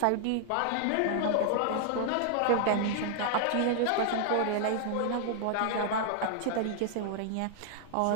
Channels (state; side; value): different; both; correlation -0.01